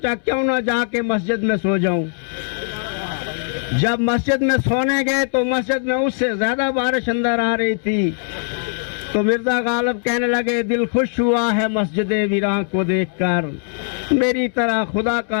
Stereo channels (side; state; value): right; silent; 66 dB below the other